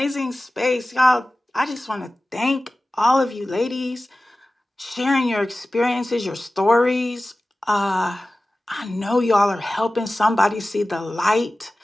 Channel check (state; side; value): normal; both; correlation 0.96